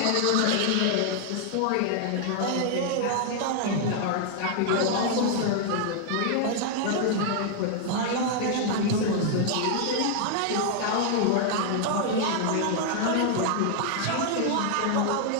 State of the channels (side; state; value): both; different; correlation 0.00